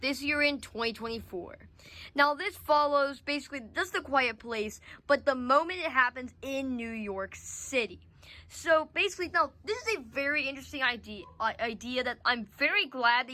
this year in 2024. Now this follows basically just A Quiet Place, but the moment it happens in New York City. So basically, now this is a very interesting idea that I'm very glad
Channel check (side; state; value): both; identical; correlation 1.00